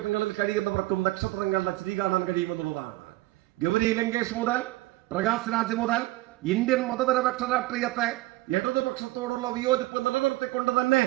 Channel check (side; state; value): left; quieter; 19.0 dB